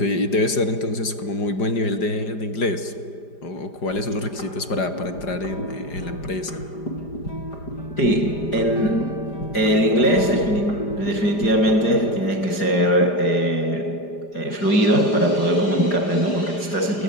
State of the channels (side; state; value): right; late; 5.0 ms